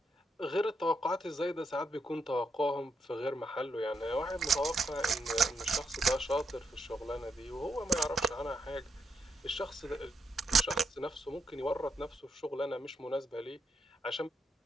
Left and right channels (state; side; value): normal; both; correlation 0.81